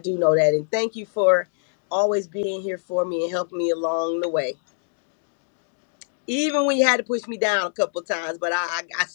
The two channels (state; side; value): silent; right; digital silence